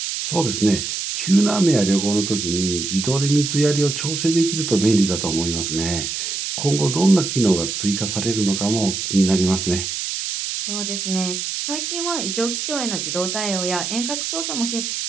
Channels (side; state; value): right; noise; hiss, 3 dB below the sound